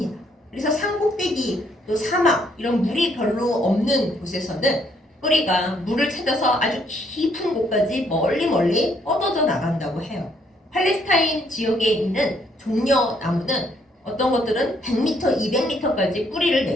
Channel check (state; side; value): normal; both; correlation 0.69